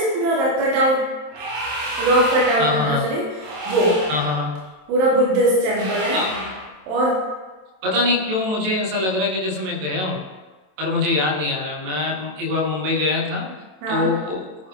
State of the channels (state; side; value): late; left; 27 ms